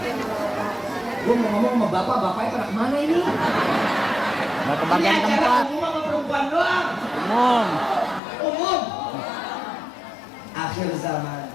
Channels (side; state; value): right; drops out; at 8.2 s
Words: Gue mau ngomong sama bapaknya pada kemana ini? Mau ke bagian ini tempat. acara umum sama perempuan doang. Umum. Akhir zaman.